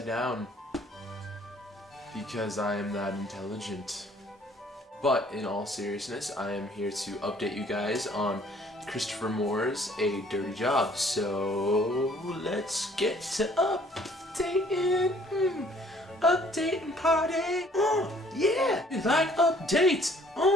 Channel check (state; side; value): normal; both; correlation 0.59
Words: down because I am that intelligent. But in all seriousness, I am here to update you guys on Christopher Moore's A Dirty Job. So let's get to updating. Updating party. Yeah, you like updates.